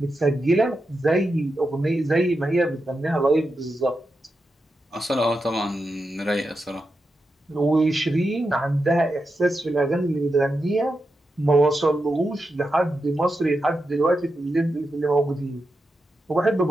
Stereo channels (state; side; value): normal; both; correlation 0.88